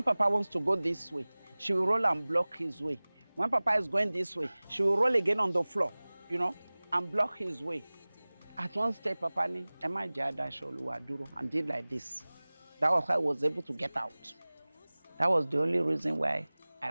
Papa wants to go this way, she will roll and block his way. When Papa is going this way, she will roll again on the floor, you know, and block his way. At one stage, Papa ni, Emma Jada Sholuwa Duro, and did like this. That was how I was able to get out. That was the only reason why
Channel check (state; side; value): inverted; both; correlation -1.00